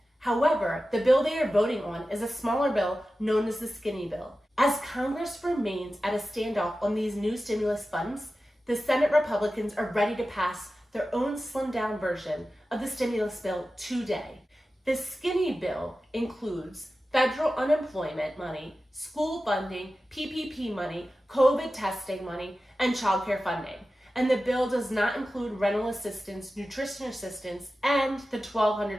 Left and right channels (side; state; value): both; normal; correlation 0.94